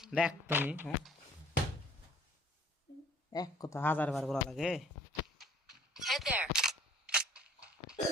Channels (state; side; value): normal; both; correlation 0.56